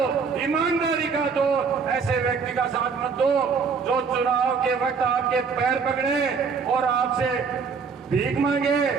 ईमानदारी का दो। ऐसे व्यक्ति का साथ मत दो जो चुनाव के वक्त आपके पैर पकड़े और आपसे भीख मांगे,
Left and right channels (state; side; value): quieter; left; 5.5 dB